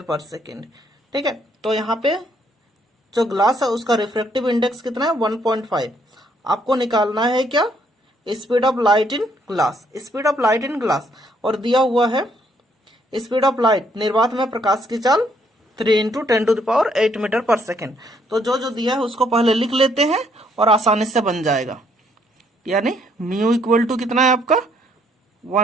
पर second. ठीक है, तो यहाँ पे जो glass है उसका refractive index कितना है? 1.5। आपको निकालना है क्या? Speed of light in glass. Speed of light in glass, और दिया हुआ है स्पीड ऑफ लाइट, निर्वात में प्रकाश की चाल 3 into 10 to the power 8 metre पर सेकेंड। तो जो दिया है उसको पहले लिख लेते हैं और आसानी से बन जाएगा। यानी म्यू इक्वल टू कितना है आपका?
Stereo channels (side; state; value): both; normal; correlation 0.69